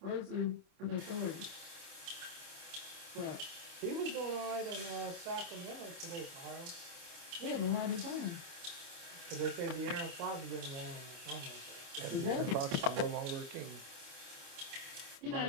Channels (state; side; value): late; left; 29 ms